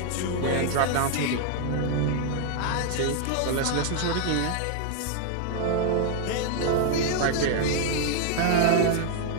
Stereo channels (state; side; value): different; both; correlation 0.00